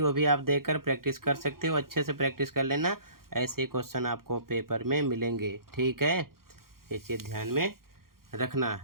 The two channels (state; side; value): late; left; 0.92 ms